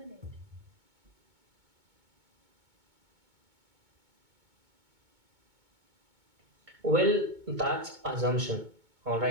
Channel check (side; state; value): left; late; 2.2 ms